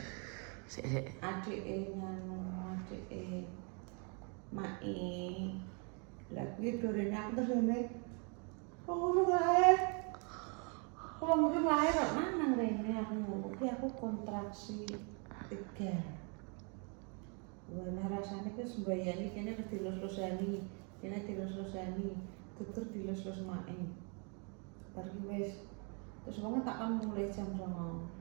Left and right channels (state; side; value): quieter; left; 36.2 dB